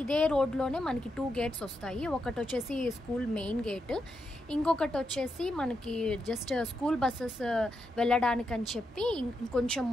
ఇదే రోడ్లోనే మనకి 2 గేట్స్ వస్తాయి. ఒకటి వచ్చేసి స్కూల్ మెయిన్ గేట్, ఇంకొకటి వచ్చేసి మనకి జస్ట్ స్కూల్ బస్సెస్ వెళ్ళడానికని చెప్పి ఇంకొంచెం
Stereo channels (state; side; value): normal; both; correlation 0.84